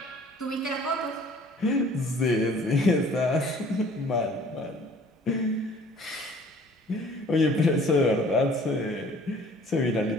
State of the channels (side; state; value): both; normal; correlation 0.53